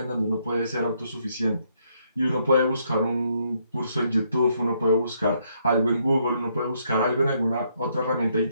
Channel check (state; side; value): inverted; both; correlation -0.73